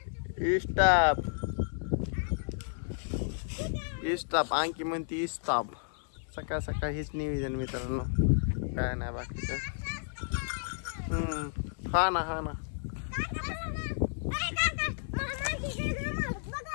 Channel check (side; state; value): right; silent; digital silence